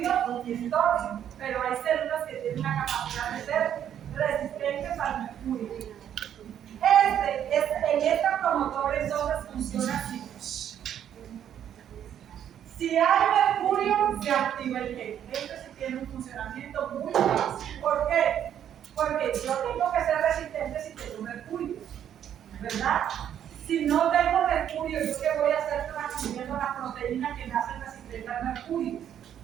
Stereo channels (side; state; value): left; quieter; 9.8 dB